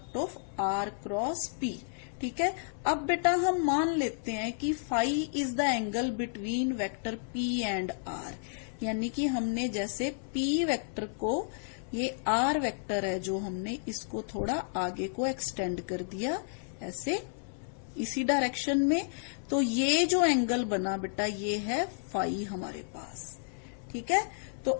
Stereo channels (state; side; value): silent; right; 57 dB below the other